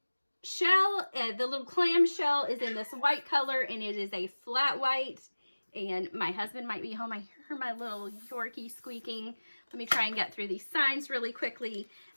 shell, the little clam shell is in this white color, and it is a flat white. And my husband might be home. I hear my little Yorkie squeaking. Let me try and get through these signs really quickly.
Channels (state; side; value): inverted; both; correlation -1.00